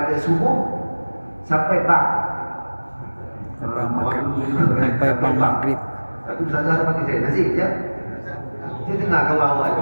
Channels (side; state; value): both; inverted; correlation -1.00